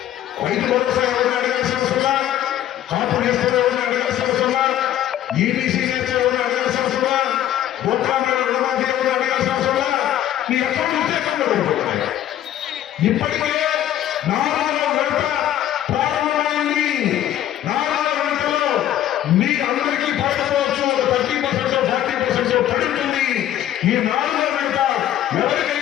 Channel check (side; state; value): right; quieter; 12.0 dB